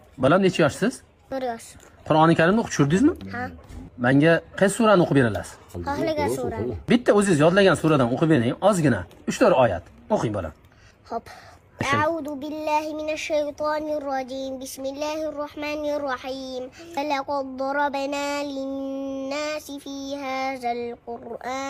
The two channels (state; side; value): identical; both; correlation 1.00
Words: Balam necha yoshsiz? 1 yosh. Qur'oni Karimni o'qib tushirdingizmi? Ha. Menga qaysi surani o'qib berasiz? Xohlagan surani. Bitta o'zingiz yodlagan suradan o'qib bering, ozgina. 3-4 oyat. O'qing bolam. Hop. أعوذ بالله من الشيطان الرجيم بسم الله الرحمن الرحيم ولقد ضربنا للناس في هذا